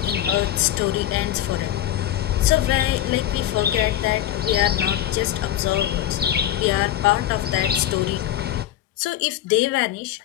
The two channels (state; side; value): quieter; right; 12.6 dB